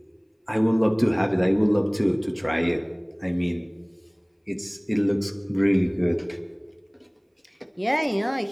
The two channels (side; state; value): both; identical; correlation 1.00